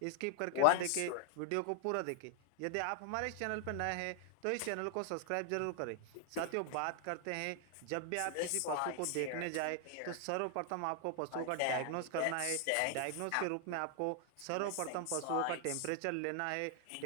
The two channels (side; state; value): both; different; correlation 0.00